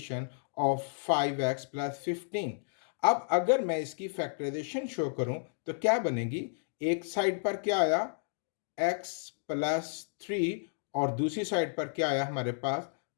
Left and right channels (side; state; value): right; silent; digital silence